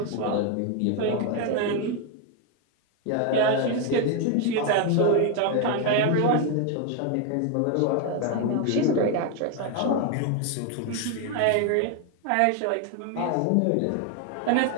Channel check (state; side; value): different; both; correlation 0.01